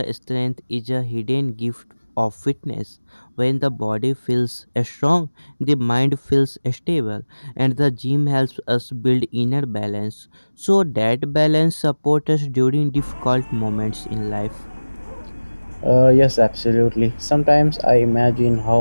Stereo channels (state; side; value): inverted; both; correlation -1.00